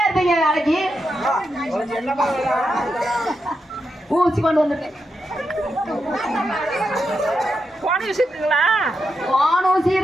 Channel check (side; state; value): both; normal; correlation 0.86